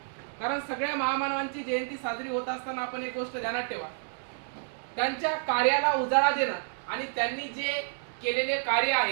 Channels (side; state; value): left; silent; digital silence